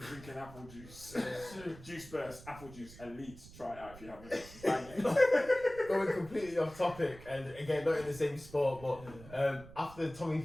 apple juice. Juice Burst, apple juice, elite. Try it out if you haven't. Bang it. Going completely off topic, and again, not in the same sport, but after Tommy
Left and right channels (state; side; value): noise; right; rumble, 18 dB below the sound